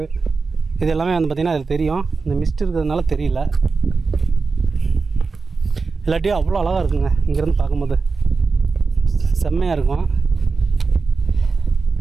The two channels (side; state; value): left; quieter; 4.4 dB